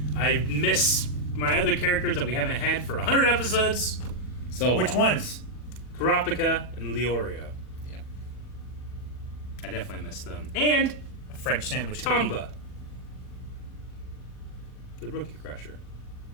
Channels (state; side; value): late; right; 40 ms